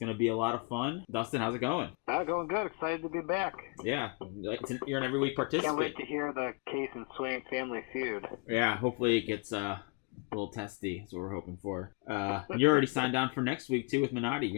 to be a lot of fun. Dustin, how's it going? Going good. Excited to be back. Yeah, you're an every week participant. Can't wait to hear the Case and Swain Family Feud. Yeah, hopefully it gets a little testy. That's what we're hoping for. You're already signed on for next week too with Minotti.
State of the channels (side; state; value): right; quieter; 32.1 dB